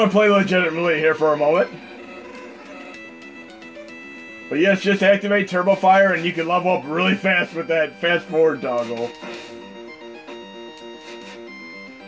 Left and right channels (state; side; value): identical; both; correlation 1.00